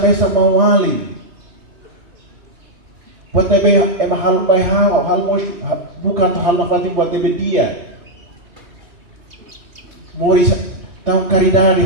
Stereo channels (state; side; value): late; left; 2.5 ms